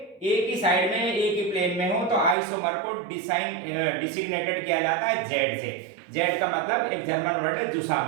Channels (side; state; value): left; drops out; at 2.4 s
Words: एक ही साइड में एक ही प्लेन में हो, तो आइसोमर को डिसिग्नेटेड किया जाता है Z से। Z का मतलब एक जर्मन वर्ड है